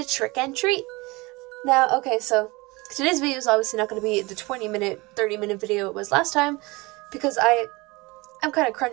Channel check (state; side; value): quieter; left; 23.9 dB